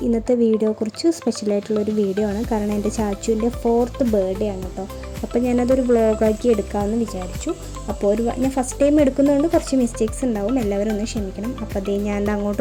ഇന്നത്തെ വീഡിയോ കുറച്ച് സ്പെഷ്യലായിട്ടുള്ളൊരു വീഡിയോ ആണ്. കാരണം എൻ്റെ ചാച്ചുവിൻ്റെ 4th ബർത്ത്ഡേ ആണ് കേട്ടോ. അപ്പോൾ ഞാനതൊരു വ്ളോഗാക്കി എടുക്കാമെന്ന് വിചാരിച്ചു. അപ്പോൾ ഞാൻ ഫസ്റ്റ് ടൈം എടുക്കുന്നതുകൊണ്ട് കുറച്ച് മിസ്റ്റേക്സ് ഉണ്ടാവും, എല്ലാവരും ഒന്ന് ക്ഷമിക്കണം. അപ്പോൾ അതേ ഞാൻ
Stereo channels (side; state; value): both; identical; correlation 1.00